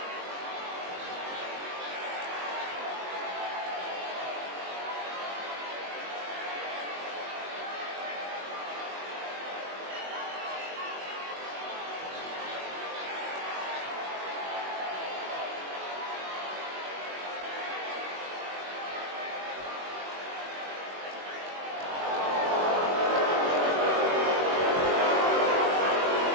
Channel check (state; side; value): late; left; 21 ms